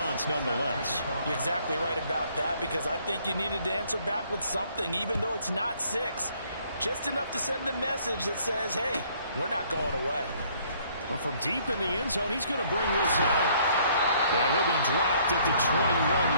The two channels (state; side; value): inverted; both; correlation -0.62